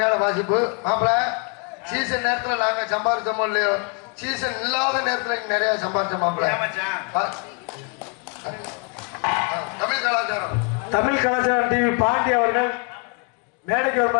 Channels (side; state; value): right; quieter; 34.9 dB